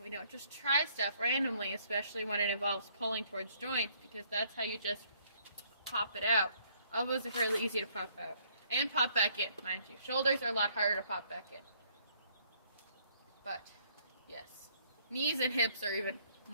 We don't just try stuff randomly, especially when it involves pulling towards joints, because that's how you just pop it out. Elbows are fairly easy to pop out. And pop back in, mind you. Shoulders are a lot harder to pop back in. But, yes. Knees and hips are even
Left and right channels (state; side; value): inverted; both; correlation -0.64